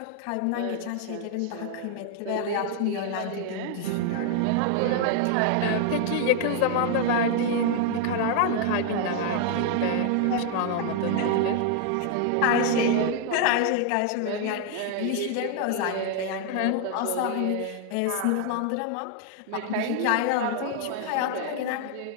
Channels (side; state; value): both; different; correlation 0.00